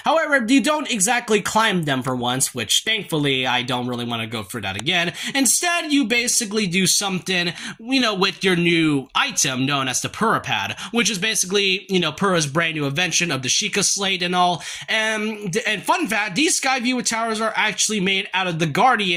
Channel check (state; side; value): identical; both; correlation 1.00